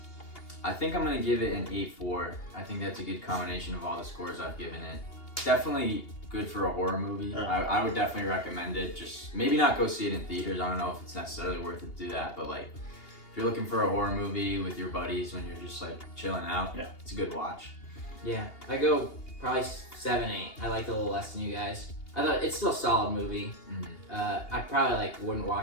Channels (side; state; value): right; late; 2.8 ms